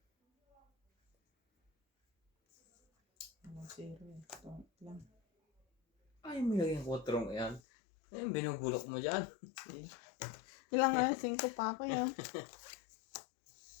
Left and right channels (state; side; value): drops out; right; at 7.6 s